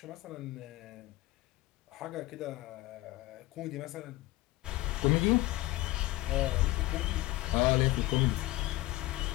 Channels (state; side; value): quieter; right; 18.7 dB